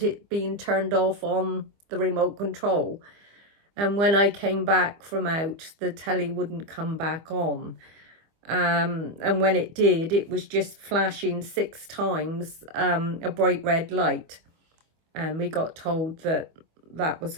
it being turned off on the remote control. And when I came back from out, the telly wouldn't come back on. And when it did, it was just flashing 6 times a bright red light. And we got told that that was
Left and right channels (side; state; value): left; late; 25 ms